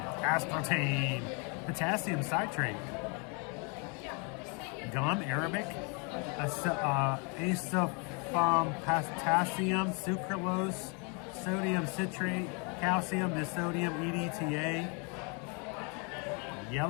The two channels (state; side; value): quieter; right; 34.1 dB